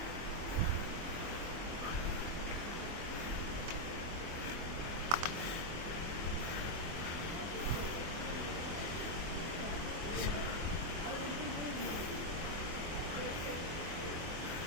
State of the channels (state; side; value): late; left; 24 ms